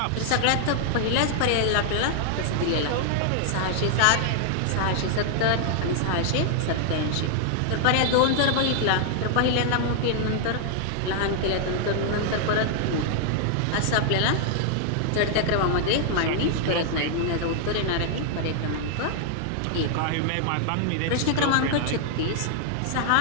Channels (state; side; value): different; both; correlation -0.01